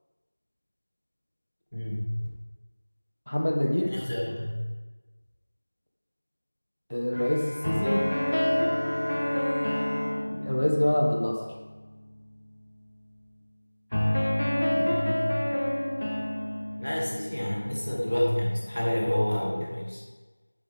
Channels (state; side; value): inverted; both; correlation -1.00